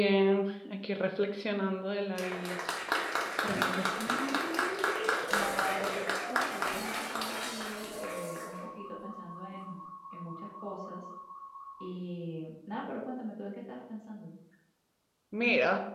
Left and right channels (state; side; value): identical; both; correlation 1.00